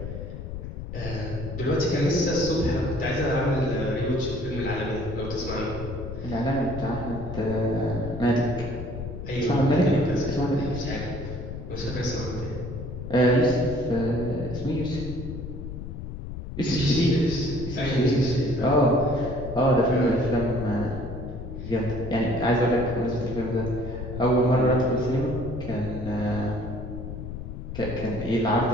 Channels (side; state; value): left; noise; rumble, 8 dB below the sound